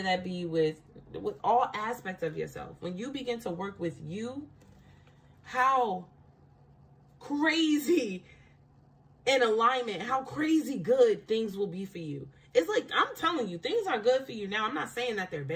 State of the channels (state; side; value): identical; both; correlation 1.00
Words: that be with all aspects of yourself, when you begin to work with you, how crazy in alignment, how crazy good things will be for you. It's like, I'm telling you, things are good for you now. I'm not saying that they're